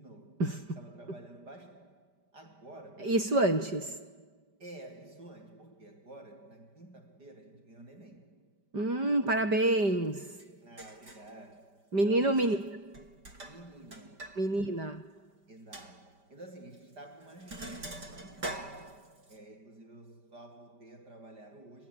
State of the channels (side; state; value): left; late; 5.1 ms